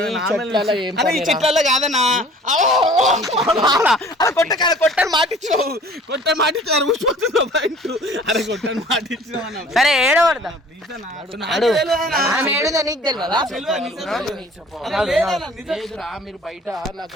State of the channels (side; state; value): both; normal; correlation 0.50